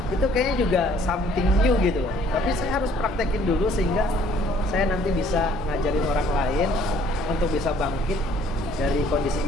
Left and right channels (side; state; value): both; normal; correlation 0.59